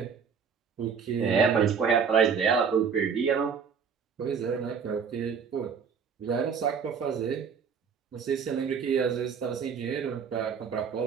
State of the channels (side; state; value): left; quieter; 6.4 dB